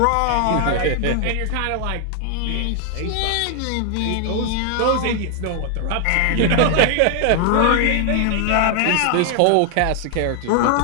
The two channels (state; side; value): different; both; correlation 0.00